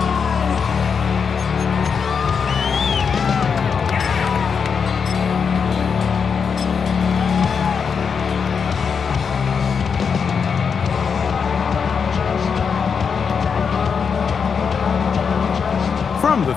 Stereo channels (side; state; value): right; quieter; 6.2 dB